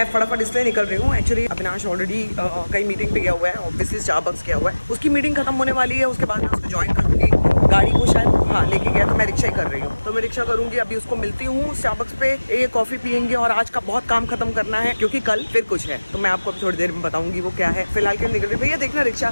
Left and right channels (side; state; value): both; inverted; correlation -1.00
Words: फटाफट इसलिए निकल रही हूँ, एक्चुअली अविनाश ऑलरेडी कई मीटिंग पे गया हुआ है, ऑब्वियसली स्टारबक्स गया हुआ है। उसकी मीटिंग खत्म होने वाली है, उसके बाद मैं उसको ज्वाइन करूँगी। गाड़ी को शायद लेके गया, तो मैं रिक्शा ही कर रही हूँ। तो मैं रिक्शा करूँगी, अभी उसको मिलती हूँ स्टारबक्स पे, ये कॉफ़ी पियेंगे और आज का बहुत काम खत्म करना है क्योंकि कल फिर कुछ है। तो मैं आपको थोड़ी देर में बताऊंगी वो क्या है। फिलहाल के निकल रही। भैया देखना रिक्शा।